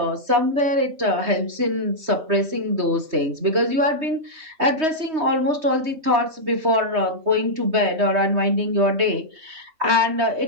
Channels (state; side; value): late; left; 3.2 ms